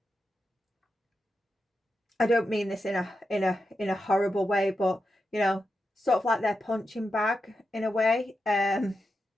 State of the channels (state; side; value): normal; both; correlation 0.88